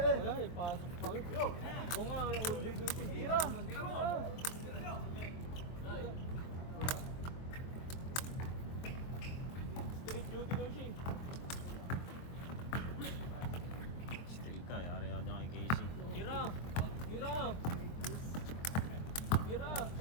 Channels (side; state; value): right; late; 23 ms